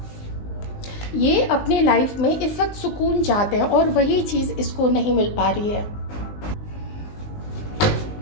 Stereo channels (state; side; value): late; right; 19 ms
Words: में इस वक्त सुकून चाहते हैं और वही चीज़ इसको नहीं मिल पा रही है।